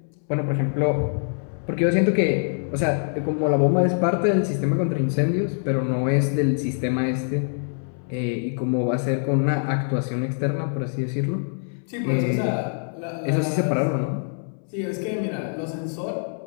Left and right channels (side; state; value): right; silent; 62 dB below the other